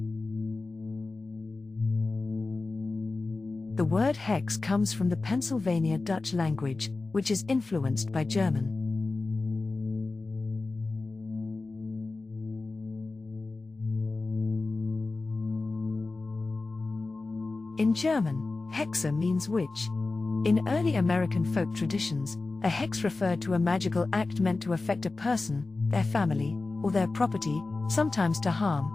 The word hex comes from the Pennsylvania Dutch language, which is influenced by German. In German, hexe means witch. In early American folk traditions, a hex referred to a magical act meant to affect a person, their family, or their property, sometimes to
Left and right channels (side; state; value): right; quieter; 3.5 dB